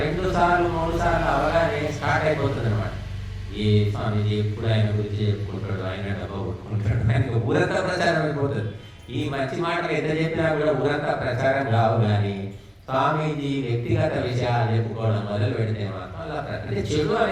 2 సార్లు 3 సార్లు అవగానే స్టార్ట్ అయిపోతుంది అనమాట. ఏ స్వామీజీ ఎప్పుడు ఆయన గురించి చెప్పుకుంటాడు, ఆయన డబ్బా కొట్టుకుంటాడు, ఆయనకు ఊరంతా ప్రచారం అయిపోతుంది. ఈ మంచి మాటలు ఎంత చెప్పినా కూడా ఊరంతా ప్రచారం కావు. కానీ స్వామీజీ వ్యక్తిగత విషయాలు చెప్పుకోవడం మొదలు పెడితే మాత్రం అలా అంటే చెడు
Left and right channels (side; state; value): both; identical; correlation 1.00